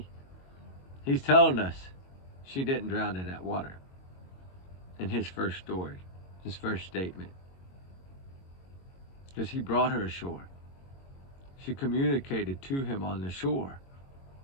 He's telling us she didn't drown in that water. In his first story. His first statement. Because he brought her ashore. She communicated to him on the shore.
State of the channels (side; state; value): right; late; 22 ms